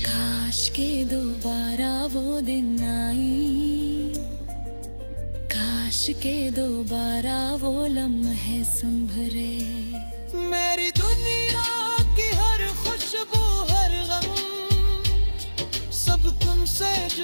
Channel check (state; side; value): inverted; both; correlation -1.00